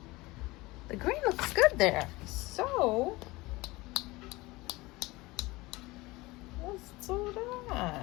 The green looks good there. So, let's do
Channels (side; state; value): right; quieter; 21.5 dB